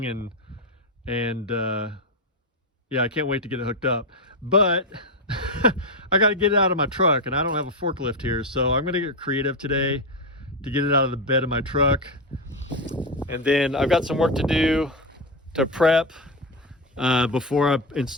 and yeah, I can't wait to get it hooked up. But I got to get it out of my truck, and I don't have a forklift here, so I'm going to get creative today to get it out of the bed of my truck. And then I've got some work to do to prep before I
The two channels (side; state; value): both; normal; correlation 0.11